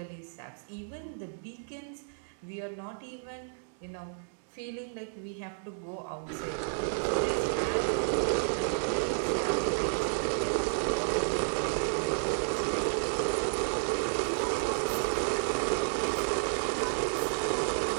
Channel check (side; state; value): left; silent; digital silence